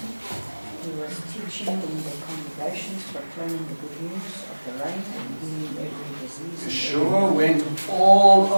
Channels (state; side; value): inverted; both; correlation -1.00